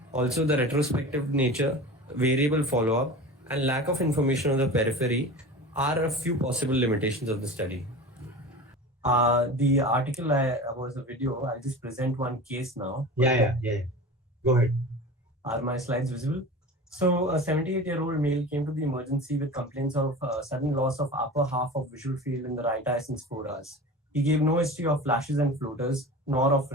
Also, the retrospective nature, variable follow-up, and lack of information on the periphery are a few possible limitations of the study. The article was a video. I'll just present one case now. Yeah. Go ahead. Are my slides visible? So, a 78-year-old male came to the emergency with complaints of sudden loss of upper half of visual field in the right eye since 4 hours. He gave no history of flashes and floaters, nor of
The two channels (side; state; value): both; normal; correlation 0.33